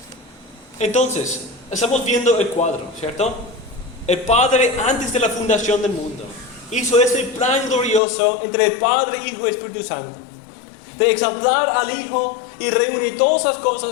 Entonces, estamos viendo el cuadro, ¿cierto? El Padre, antes de la fundación del mundo, hizo ese plan glorioso entre el Padre, Hijo y Espíritu Santo, de exaltar al Hijo y reunir todas las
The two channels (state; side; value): drops out; right; at 8.0 s